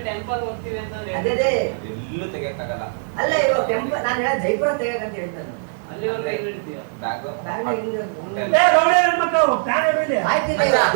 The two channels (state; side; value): silent; left; digital silence